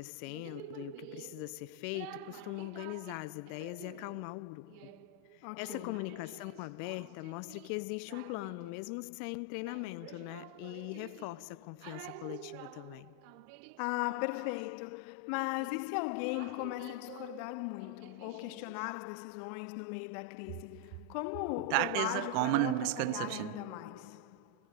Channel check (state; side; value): different; both; correlation 0.00